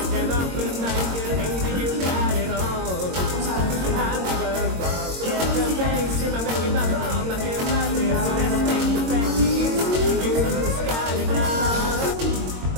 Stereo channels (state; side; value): late; left; 22 ms